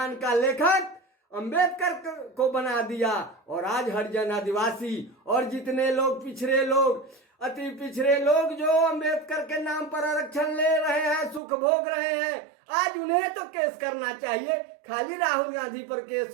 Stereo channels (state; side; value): drops out; left; at 11.4 s